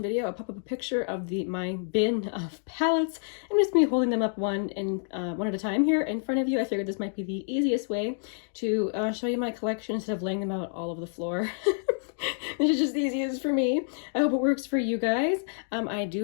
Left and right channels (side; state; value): right; silent; digital silence